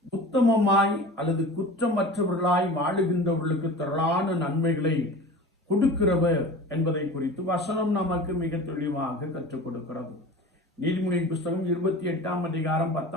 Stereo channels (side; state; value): both; normal; correlation 0.36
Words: உத்தமமாய் அல்லது குற்றமற்றவர்களாய் வாழுகின்றவர்களுக்கு திரளான நன்மைகளை கொடுக்கிறவர் என்பதை குறித்து வசனம் நமக்கு மிக தெளிவாக கற்றுக் கொடுக்கிறது. நீதிமொழியின் புஸ்தகம்